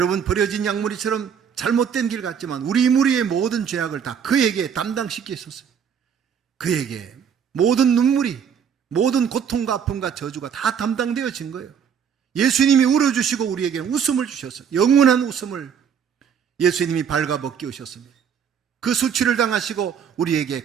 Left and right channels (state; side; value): quieter; left; 7.6 dB